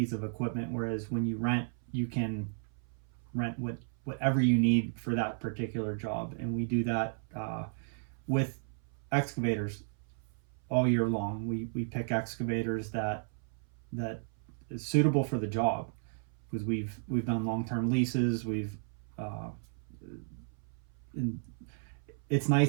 of equipment, whereas when you rent, you can rent whatever you need for that particular job. And we do that with excavators all year long. We pick excavators that is suitable for the job, because we've done long-term leases. And it's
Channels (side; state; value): left; silent; 55 dB below the other